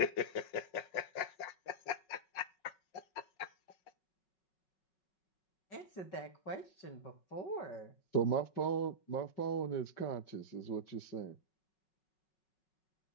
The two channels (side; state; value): right; late; 5.7 ms